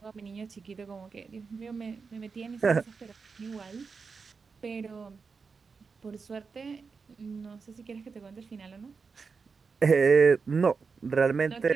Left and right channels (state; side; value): quieter; left; 5.1 dB